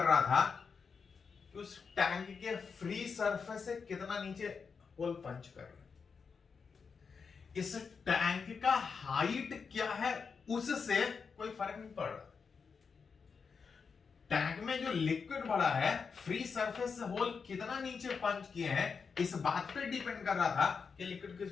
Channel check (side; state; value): right; quieter; 5.6 dB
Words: रहा था कि उस टैंक के फ्री सरफेस से कितना नीचे होल पंच कर रहा है। इस टैंक का हाइट क्या है उससे कोई फर्क नहीं पड़ रहा। टैंक में जो लिक्विड भरा है, फ्री सरफेस से होल कितना नीचे पंच किए हैं, इस बात पे डिपेंड कर रहा था कि लिक्विड